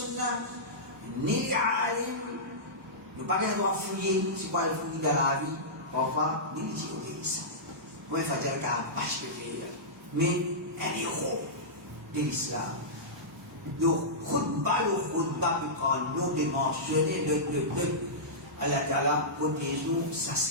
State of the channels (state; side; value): normal; both; correlation -0.15